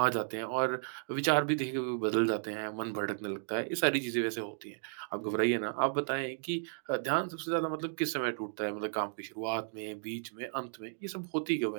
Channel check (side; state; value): left; silent; digital silence